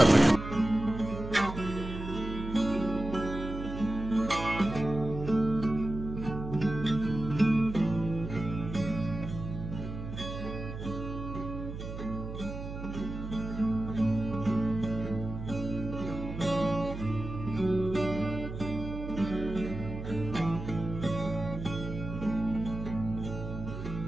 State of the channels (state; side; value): noise; right; hum, 8 dB below the sound